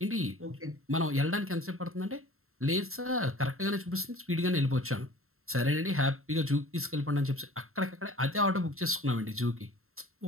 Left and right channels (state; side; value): late; left; 0.62 ms